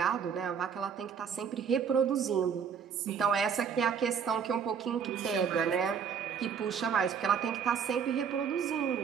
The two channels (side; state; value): left; quieter; 7.1 dB